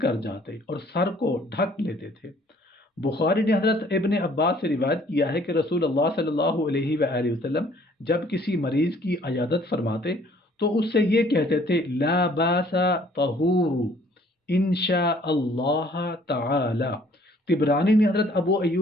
جاتے اور سر کو ڈھک لیتے تھے۔ بخاری نے حضرت ابن عباس سے روایت کیا ہے کہ رسول اللہ صلی اللہ علیہ وآلہ وسلم جب کسی مریض کی عیادت فرماتے تو اس سے یہ کہتے تھے لا باس طہور انشاء اللہ تعالی۔ طبرانی نے حضرت ابو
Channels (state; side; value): normal; both; correlation 0.58